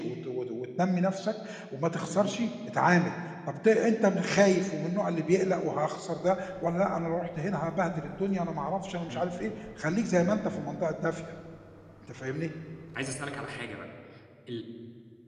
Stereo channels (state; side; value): identical; both; correlation 1.00